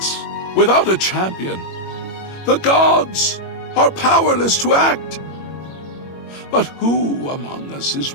without a champion. The gods are powerless to act. But who among us is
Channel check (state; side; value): late; right; 21 ms